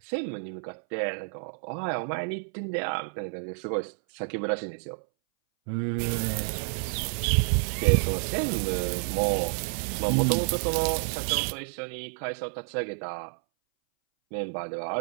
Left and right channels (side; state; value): left; silent; 58 dB below the other